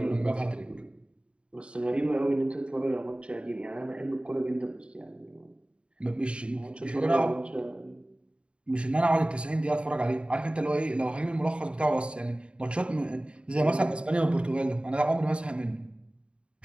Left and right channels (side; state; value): left; late; 0.056 ms